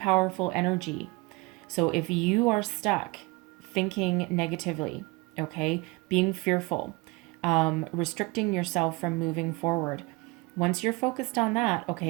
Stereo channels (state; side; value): quieter; left; 25.3 dB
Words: energy. So if you are stuck thinking negatively, okay, being fearful, restricting yourself from moving forward, once you're focused on that,